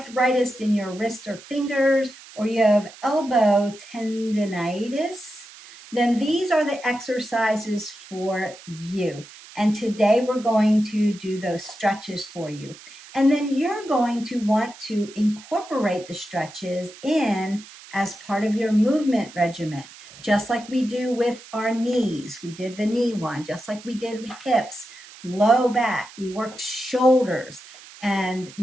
in your wrist or fingers, or you have elbow tendonitis, then these are the exercises for you. And today we're going to do those stretches for you. And then you're going to want to incorporate the stretches in as part of your movement regimen, just like we do with our knees. We did the knee one, just like we did with hips, low back. We worked shoulders. And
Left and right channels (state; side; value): noise; right; hiss, 19 dB below the sound